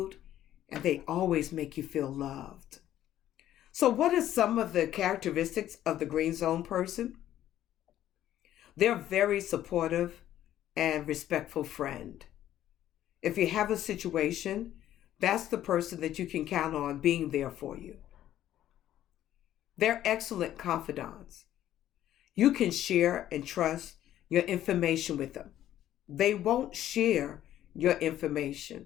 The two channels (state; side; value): quieter; right; 12.3 dB